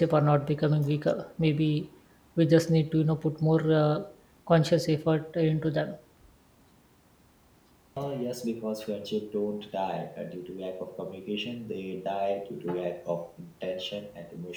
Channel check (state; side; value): identical; both; correlation 1.00